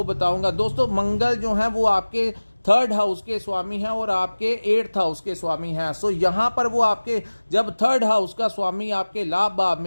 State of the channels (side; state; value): both; inverted; correlation -1.00